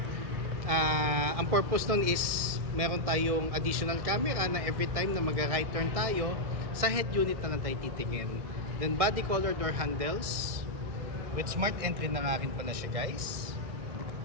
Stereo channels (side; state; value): left; late; 1.7 ms